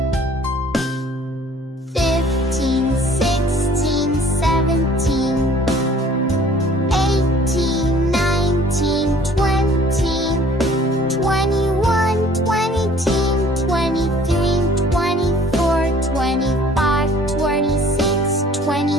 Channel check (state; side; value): normal; both; correlation 0.54